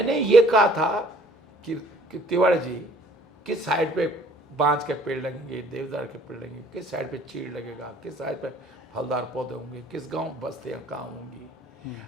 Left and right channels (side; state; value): both; normal; correlation 0.57